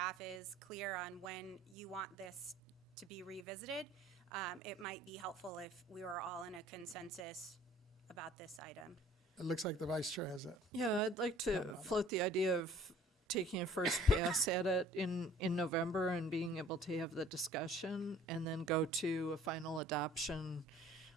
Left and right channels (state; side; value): normal; both; correlation 0.53